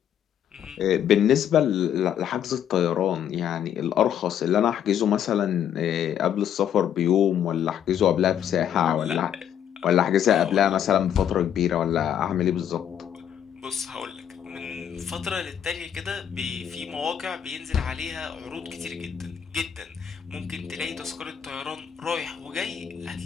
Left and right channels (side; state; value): right; quieter; 9.4 dB